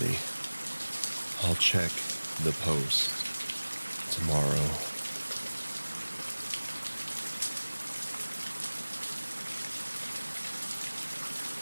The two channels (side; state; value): both; inverted; correlation -1.00